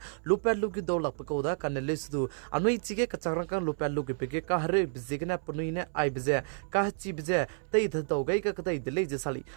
lupel lugyu do lak pakoda kanele sudu anui chige kachagrangkang lupel lugyu pege ka hare bizigna punuine ai bije ka chi bije tei dhau gai ka kadai dile je sali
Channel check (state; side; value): silent; left; 57 dB below the other